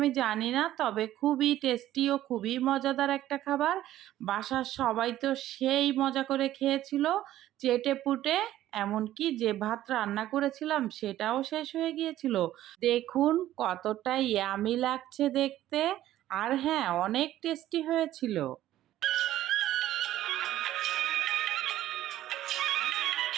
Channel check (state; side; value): quieter; left; 13.6 dB